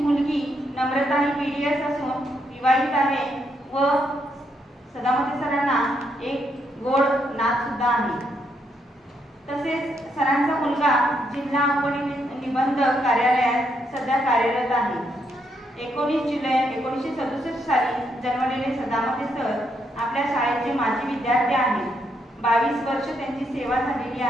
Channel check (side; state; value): both; normal; correlation 0.77